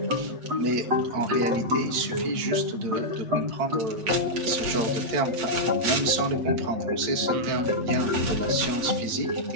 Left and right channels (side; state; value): left; late; 8.9 ms